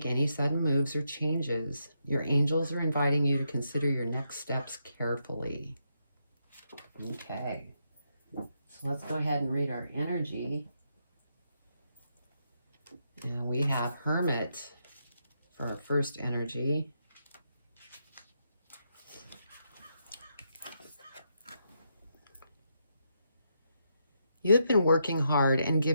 any sudden moves or changes. Your angels are inviting you to consider your next steps carefully. Okay. So let's go ahead and read our energy. And we have Hermit for our first energy. You have been working hard and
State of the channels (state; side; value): inverted; both; correlation -0.80